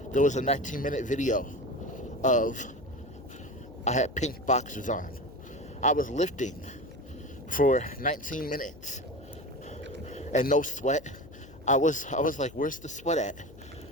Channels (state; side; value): noise; left; hum, 20 dB below the sound